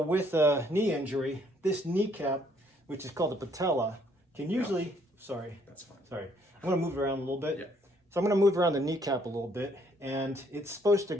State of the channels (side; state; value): both; normal; correlation 0.66